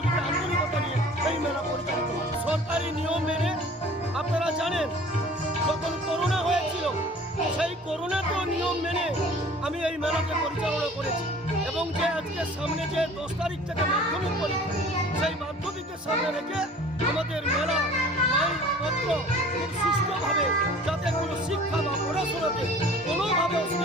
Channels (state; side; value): normal; both; correlation 0.46